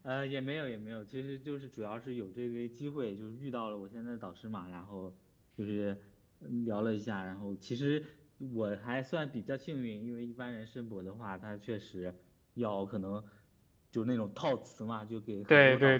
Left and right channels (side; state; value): both; identical; correlation 1.00